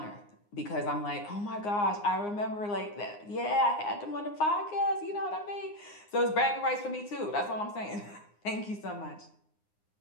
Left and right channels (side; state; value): right; late; 9.7 ms